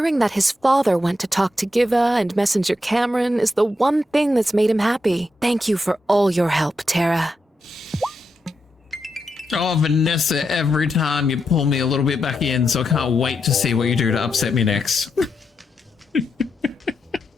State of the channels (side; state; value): both; normal; correlation 0.84